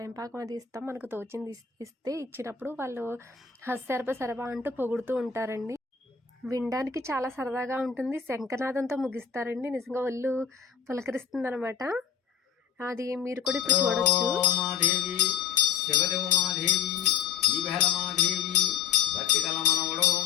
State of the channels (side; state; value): right; quieter; 7.6 dB